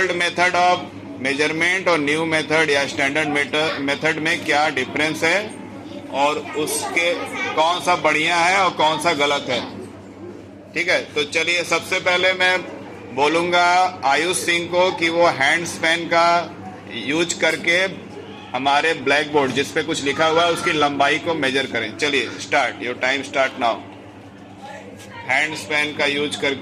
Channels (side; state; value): both; identical; correlation 1.00